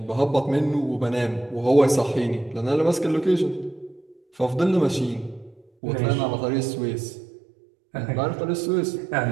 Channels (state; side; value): drops out; left; at 5.7 s